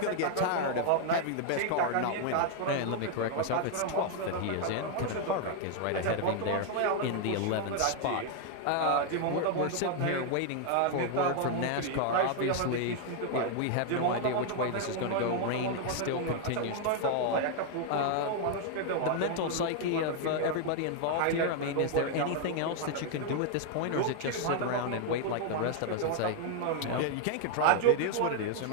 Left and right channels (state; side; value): different; both; correlation 0.00